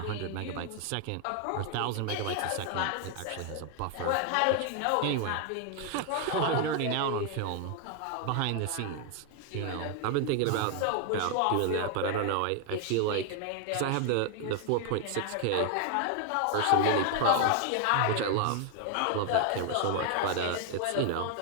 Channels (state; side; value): different; both; correlation 0.00